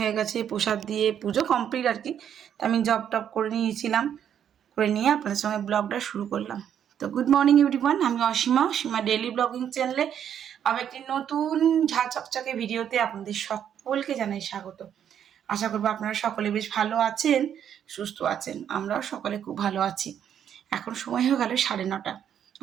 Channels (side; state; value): left; quieter; 9.2 dB